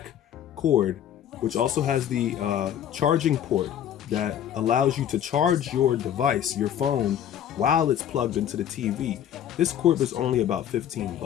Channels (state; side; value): quieter; right; 10.1 dB